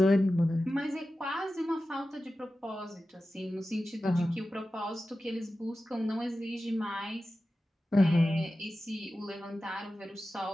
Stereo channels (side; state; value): both; normal; correlation 0.94